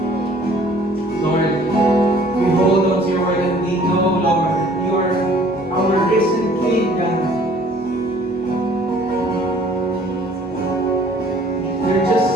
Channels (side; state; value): both; normal; correlation 0.55